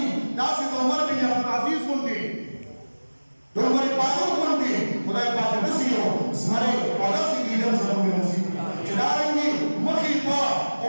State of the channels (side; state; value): both; inverted; correlation -1.00